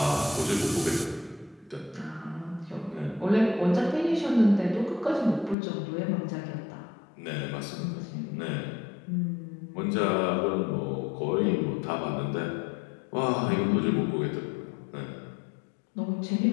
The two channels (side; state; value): right; drops out; at 5.6 s